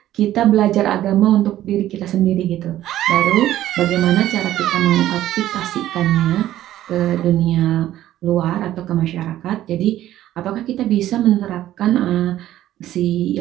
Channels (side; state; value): left; quieter; 13.3 dB